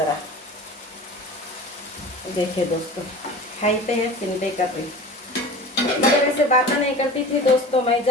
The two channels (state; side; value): normal; both; correlation 0.36